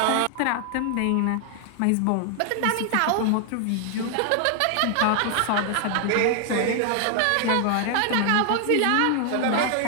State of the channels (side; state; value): both; different; correlation 0.00